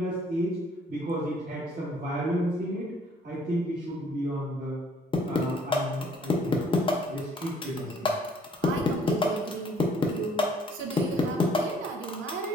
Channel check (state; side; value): normal; both; correlation 0.60